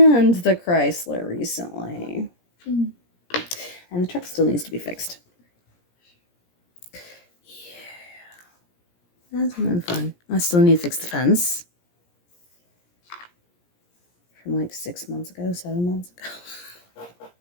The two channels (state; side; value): late; right; 17 ms